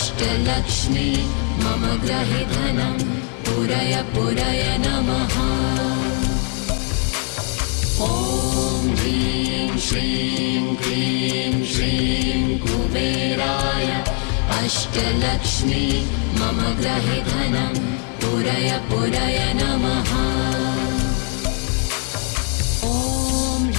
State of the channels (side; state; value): right; quieter; 37.5 dB